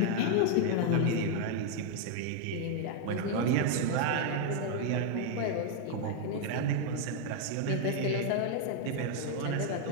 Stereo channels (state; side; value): different; both; correlation 0.00